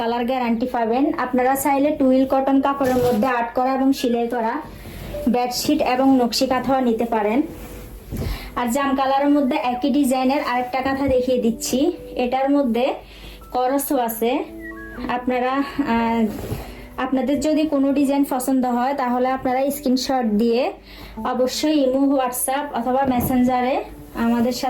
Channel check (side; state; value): both; identical; correlation 1.00